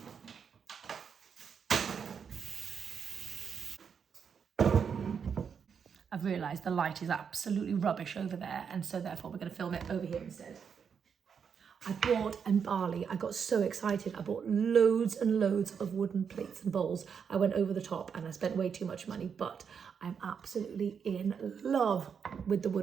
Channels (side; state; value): left; quieter; 6.8 dB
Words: I've realised the light is absolutely rubbish over there, and so therefore we're going to film it over here instead. I bought, in Bali, I got so excited, I bought loads and loads of wooden plates and bowls. I went over the top and I spent way too much money, but I'm absolutely in love with the